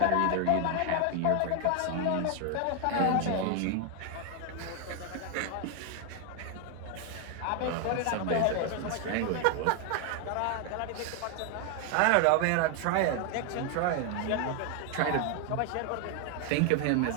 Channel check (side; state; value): both; different; correlation 0.01